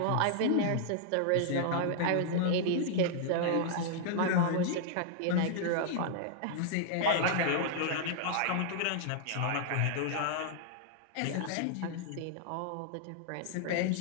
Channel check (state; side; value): different; both; correlation -0.01